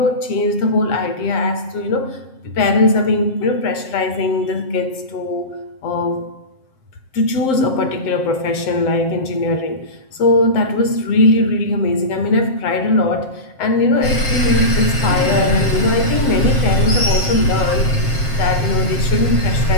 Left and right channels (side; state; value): right; late; 7.6 ms